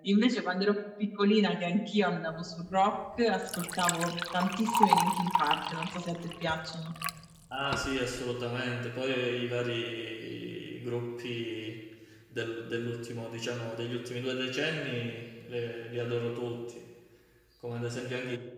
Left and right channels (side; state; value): both; identical; correlation 1.00